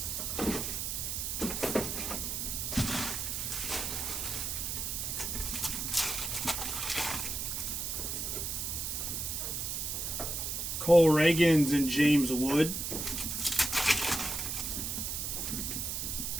Cole Reagans and James Wood.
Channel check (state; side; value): noise; right; hiss, 2 dB below the sound